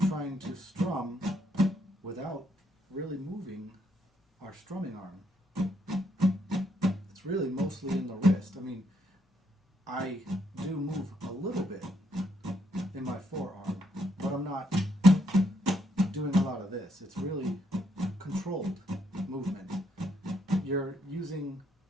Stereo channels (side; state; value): both; normal; correlation 0.74